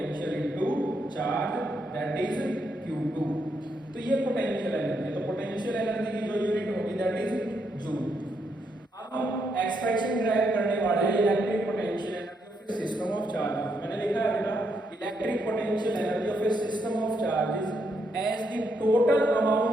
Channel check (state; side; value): normal; both; correlation 0.78